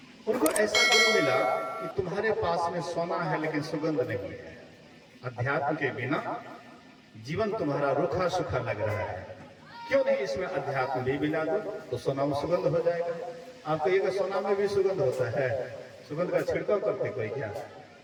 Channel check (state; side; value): identical; both; correlation 1.00